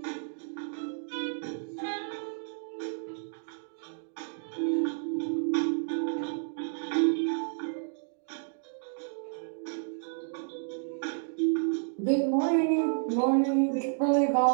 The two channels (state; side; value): silent; left; digital silence